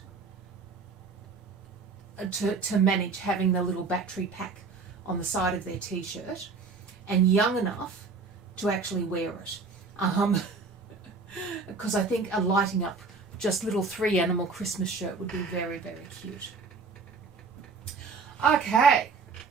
to manage having the little battery pack on the side of their t-shirt, and young enough to actually wear it. Because I think a lighting up just little 3 animal Christmas shirt would be very, very cute. Okay.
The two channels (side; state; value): left; quieter; 4.5 dB